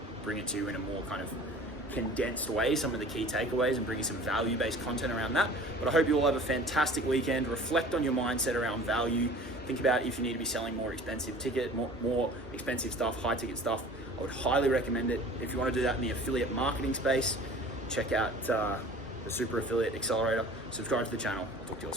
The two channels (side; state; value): both; normal; correlation 0.44